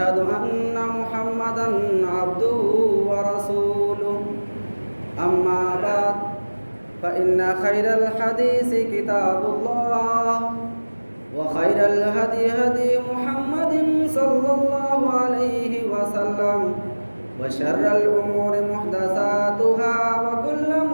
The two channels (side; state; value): both; inverted; correlation -1.00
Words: أن محمدًا عبده ورسوله أما بعد فإن خير الحديث كتاب الله وخير الهدي هدي محمد صلى الله عليه وسلم وشر الأمور محدثاتها وكل